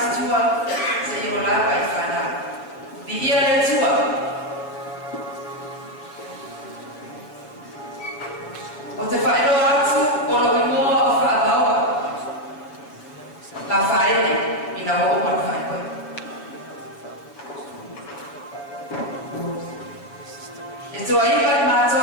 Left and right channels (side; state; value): right; late; 6.9 ms